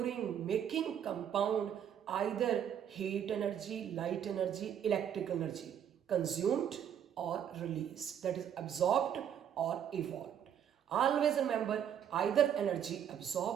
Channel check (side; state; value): left; quieter; 9.2 dB